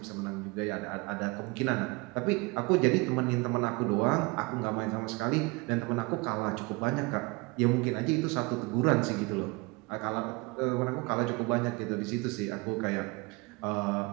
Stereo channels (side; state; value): left; quieter; 26.8 dB